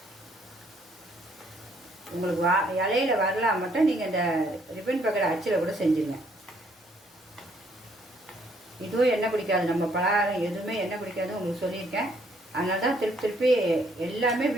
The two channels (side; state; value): both; normal; correlation 0.67